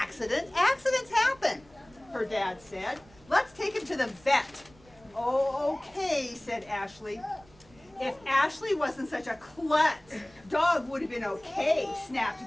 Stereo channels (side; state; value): right; noise; rumble, 27 dB below the sound